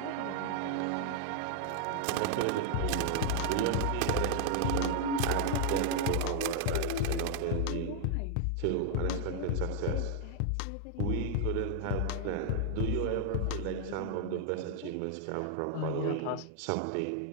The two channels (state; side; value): different; both; correlation 0.00